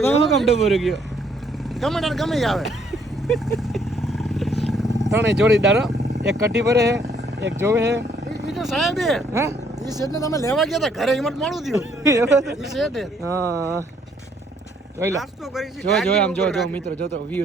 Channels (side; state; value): both; normal; correlation 0.66